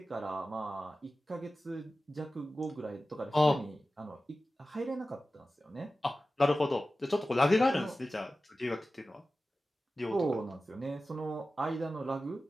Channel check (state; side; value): normal; both; correlation 0.95